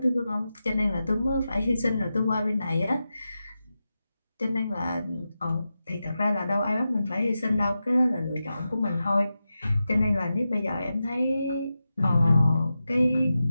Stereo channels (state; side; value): inverted; both; correlation -0.91